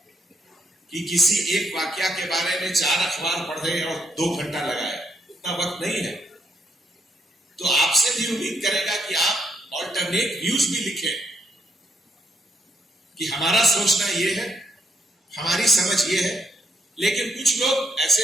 कि किसी एक वाक्या के बारे में 4 अखबार पढ़े और 2 घंटा लगाए? उतना वक्त नहीं है। तो आपसे भी उम्मीद करेगा कि आप ऑल्टरनेट व्यूज भी लिखें कि हमारा सोचना ये है, हमारी समझ ये है, लेकिन कुछ लोग ऐसे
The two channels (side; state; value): both; normal; correlation 0.76